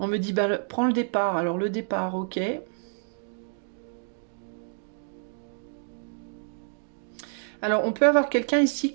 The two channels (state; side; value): silent; left; 59 dB below the other